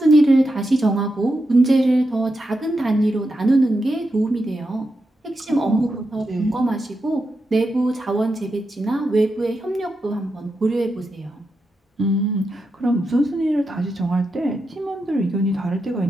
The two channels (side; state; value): both; normal; correlation 0.87